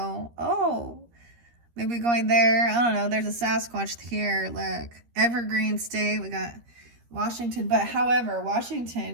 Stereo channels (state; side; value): late; left; 13 ms